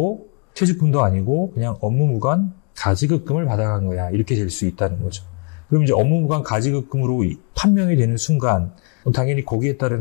퇴직금도 아니고 그냥 업무무관 가지급금을 받아간 거야. 이렇게 될 수 있다는 거죠. 그럼 이제 업무무관 가지급금으로 판명이 되는 순간 당연히 거기에 따른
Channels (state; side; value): quieter; right; 39.2 dB